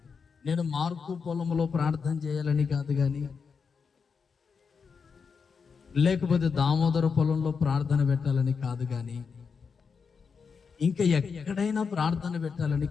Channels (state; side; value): quieter; right; 5.7 dB